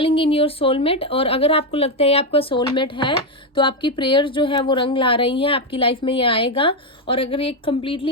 इन योर सोलमेट, और अगर आपको लगता है आपका सोलमेट है तो आपकी प्रेयर्स जो है वो रंग ला रही हैं, आपकी लाइफ में ये आएगा। और अगर एक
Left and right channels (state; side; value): normal; both; correlation 0.07